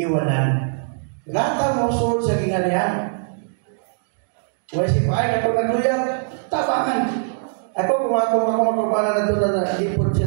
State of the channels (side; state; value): left; silent; digital silence